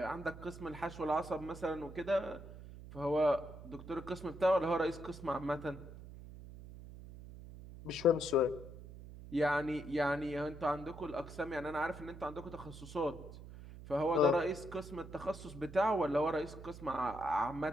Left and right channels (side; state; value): right; noise; hum, 14 dB below the sound